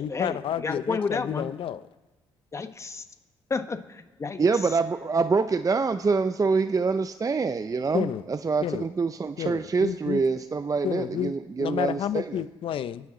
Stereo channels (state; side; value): normal; both; correlation 0.72